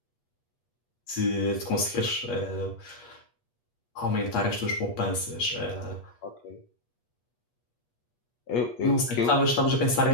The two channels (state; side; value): late; right; 8.4 ms